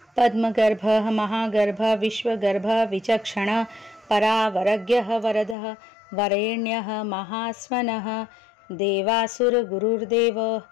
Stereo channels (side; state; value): right; drops out; at 5.6 s